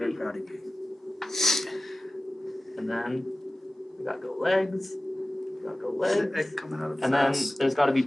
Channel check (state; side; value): normal; both; correlation 0.95